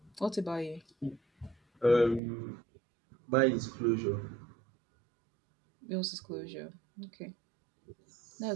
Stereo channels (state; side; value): drops out; left; at 2.2 s